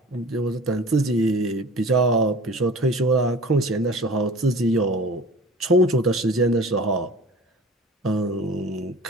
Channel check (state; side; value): normal; both; correlation 0.42